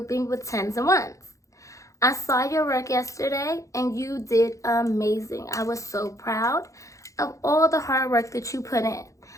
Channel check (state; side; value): late; right; 0.15 ms